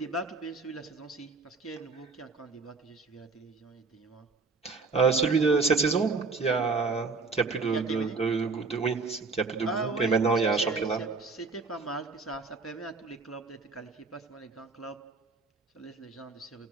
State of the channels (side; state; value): left; quieter; 4.2 dB